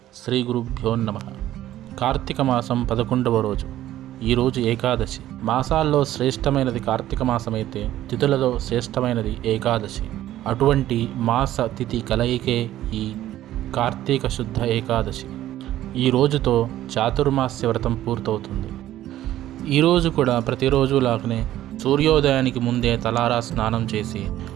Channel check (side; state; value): left; quieter; 13.5 dB